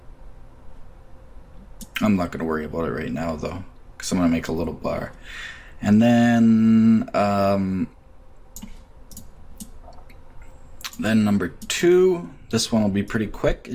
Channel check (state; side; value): identical; both; correlation 1.00